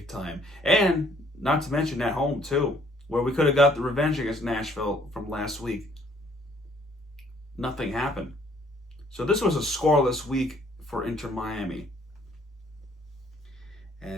time, and not to mention at home too, where we could have got the revenge against Nashville from last week. Nothing happened. So this was a scoreless week for Inter Miami,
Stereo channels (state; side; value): normal; both; correlation 0.61